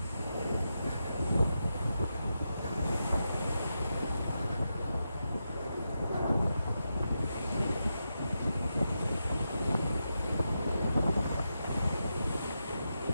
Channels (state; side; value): inverted; both; correlation -0.87